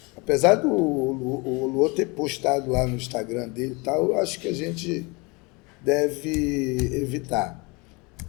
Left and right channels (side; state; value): right; quieter; 27.5 dB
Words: Apesar do Luô ter postado lá no Instagram dele e tal, eu acho que a gente deve evitar.